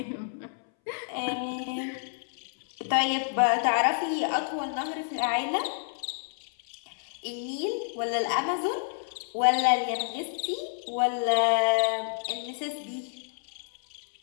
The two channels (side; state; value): right; silent; 59 dB below the other